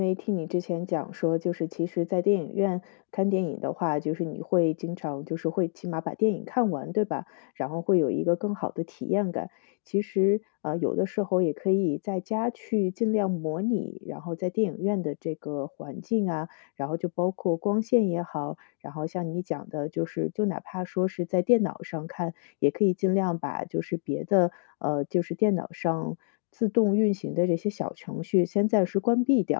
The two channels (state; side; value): silent; right; digital silence